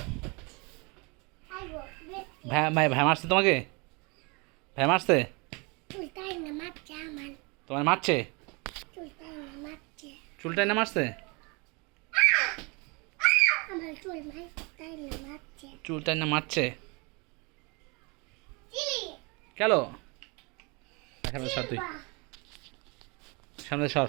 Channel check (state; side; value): quieter; left; 29.4 dB